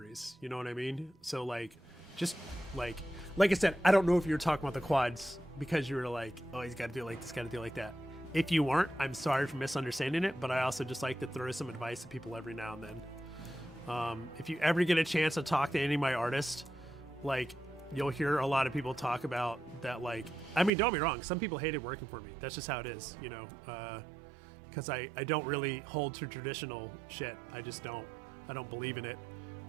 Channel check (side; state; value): left; drops out; at 20.7 s